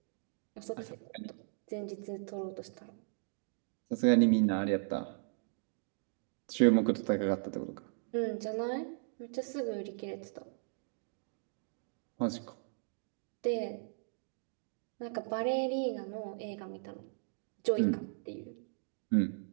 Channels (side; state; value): left; silent; digital silence